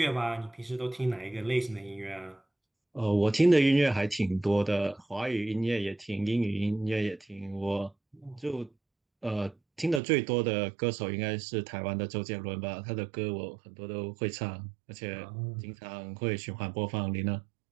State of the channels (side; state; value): left; drops out; at 10.0 s